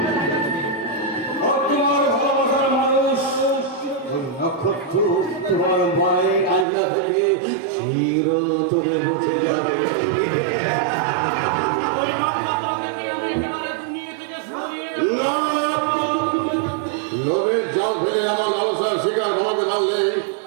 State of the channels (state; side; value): drops out; left; at 6.7 s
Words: আর তোমার ভালোবাসার মানুষ ওই নক্ষত্র তোমার মায়ের আয়না থেকে চিরতরে বসে যাবে। লোভের জাল ফেলে আমার ভালোবাসার শিকার আমাকে ধরলে